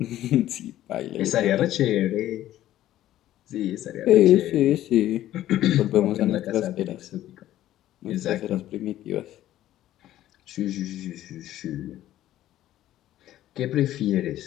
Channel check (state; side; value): quieter; right; 13.5 dB